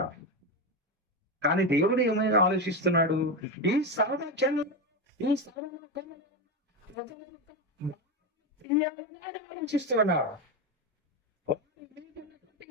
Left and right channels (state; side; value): normal; both; correlation 0.13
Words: కానీ దేవుడు ఏమైనా ఆలోచిస్తున్నాడు? ఈ సర్వజనులు, ఈ సర్వలోకంలో ఆలోచిస్తున్నాడు.